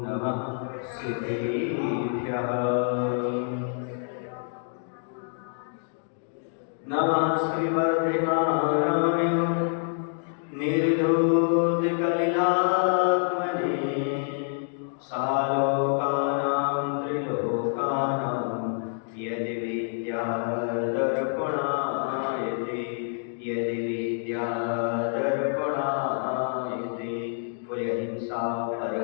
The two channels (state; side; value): silent; right; digital silence